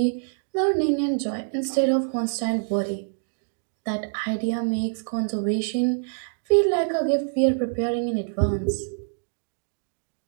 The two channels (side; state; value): left; silent; digital silence